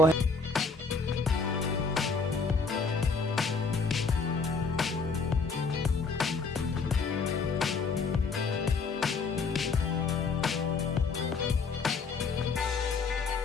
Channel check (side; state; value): right; quieter; 4.4 dB